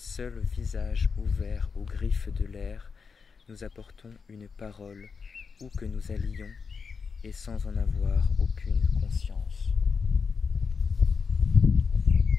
visage ouvert aux griffes de l'air, nous apportons une parole où que nous allions et sans en avoir aucune conscience.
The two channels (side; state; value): right; quieter; 5.4 dB